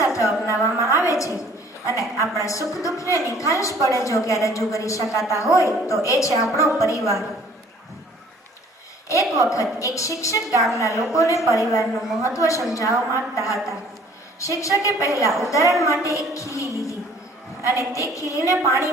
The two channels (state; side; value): normal; both; correlation 0.55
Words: અપનાવવામાં આવે છે અને આપણા સુખ દુઃખને નિખાલસ પડે જો કે રજૂ કરી શકાતા હોય તો એ છે આપણો પરિવાર। એક વખત એક શિક્ષક ગામના લોકોને પરિવારનું મહત્વ સમજાવવા માંગતા હતા। શિક્ષકે પહેલા ઉદાહરણ માટે એક ખીલી લીધી અને તે ખીલીને